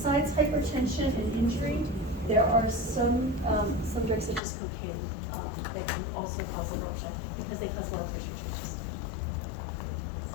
hypertension and injury, there are some drugs such as cocaine that can also cause abruption because they cause blood pressure changes.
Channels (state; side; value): drops out; right; at 4.4 s